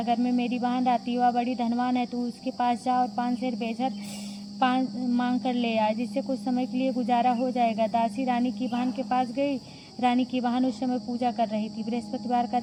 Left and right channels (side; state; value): both; identical; correlation 1.00